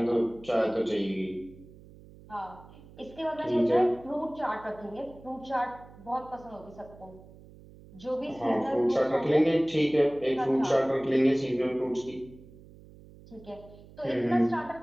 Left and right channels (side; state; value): right; noise; hum, 21 dB below the sound